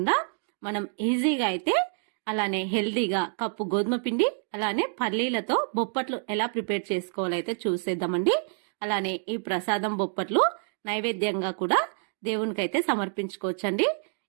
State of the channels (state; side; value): silent; left; 60 dB below the other